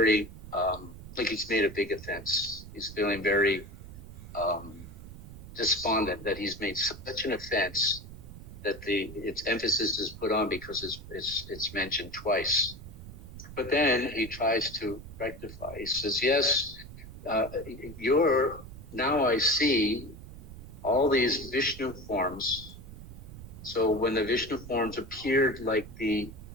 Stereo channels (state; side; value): noise; right; rumble, 14 dB below the sound